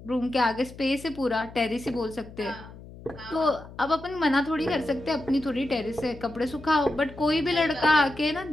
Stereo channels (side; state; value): left; noise; hum, 17 dB below the sound